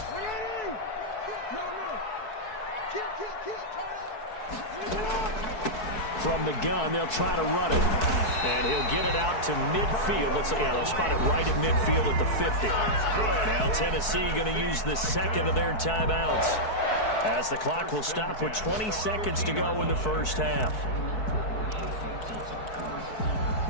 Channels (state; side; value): late; right; 4.6 ms